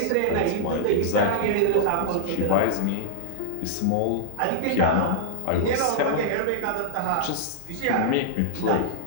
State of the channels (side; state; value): both; different; correlation -0.01